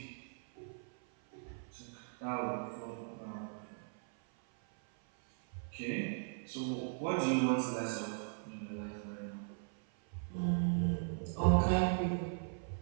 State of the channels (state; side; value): silent; left; 52 dB below the other